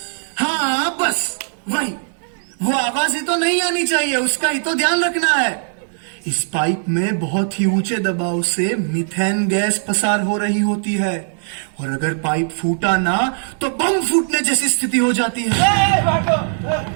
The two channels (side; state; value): left; silent; digital silence